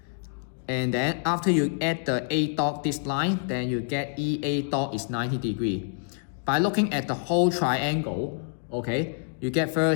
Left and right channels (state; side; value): silent; right; digital silence